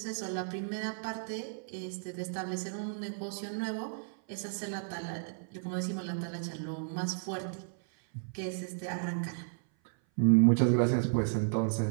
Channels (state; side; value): silent; left; 56 dB below the other